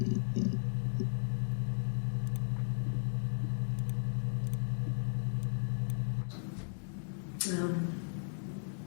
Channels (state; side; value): silent; right; 54 dB below the other